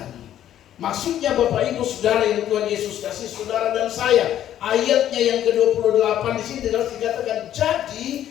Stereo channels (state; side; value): quieter; right; 11.4 dB